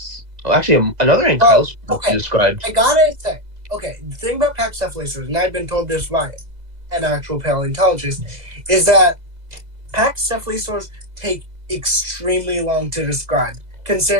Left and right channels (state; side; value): late; left; 2.0 ms